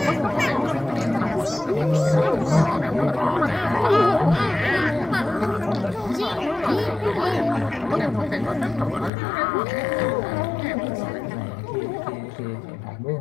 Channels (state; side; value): drops out; right; at 9.1 s